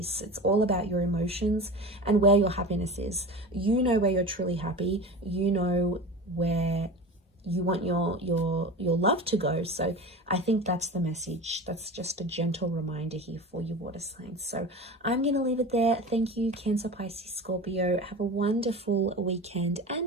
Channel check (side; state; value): both; normal; correlation 0.31